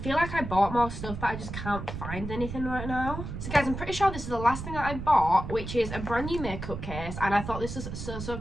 like I bought more stuff, but I just can't find anything right now. So guys, I'm pretty sure this is the last thing that I bought, which is a brand new makeup case, and I thought this was so, so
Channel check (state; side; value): noise; right; rumble, 7 dB below the sound